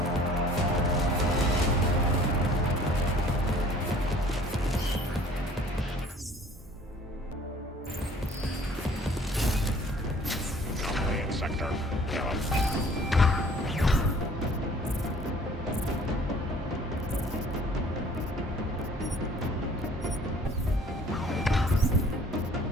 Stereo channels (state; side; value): normal; both; correlation 0.53